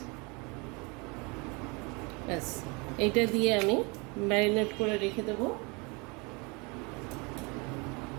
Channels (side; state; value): left; quieter; 29.2 dB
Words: ব্যাস, এইটা দিয়ে আমি ম্যারিনেট করে রেখে দেবো।